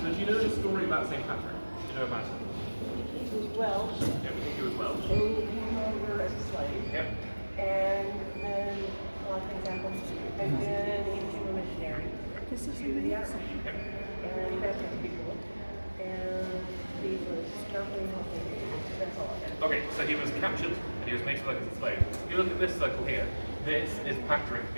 So do you know the story about St. Patrick? Do you know about it? He was Welsh, Yeah, we think he was Welsh. and he came over as a slave, Yep. and then a lot of things happened, and then he became a missionary to the Africa, Yep. and he baptized people, and he was not very healthy. That's all I got. Okay, so he was captured and he was made to work as a slave. If you look at this circle here, this is Patrick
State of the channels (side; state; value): both; inverted; correlation -1.00